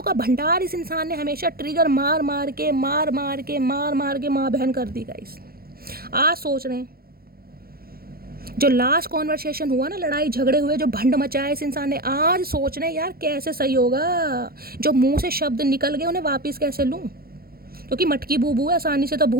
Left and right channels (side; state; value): left; late; 0.44 ms